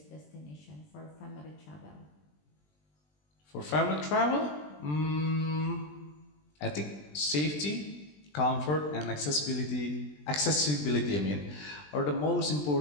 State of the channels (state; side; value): late; right; 20 ms